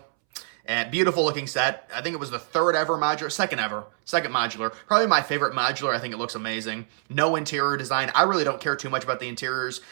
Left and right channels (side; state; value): left; silent; 62 dB below the other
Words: And beautiful looking set. I think it was the second modular. Probably my favorite modular. I think it looks amazing. No interior design. I really don't care too much about the interiors.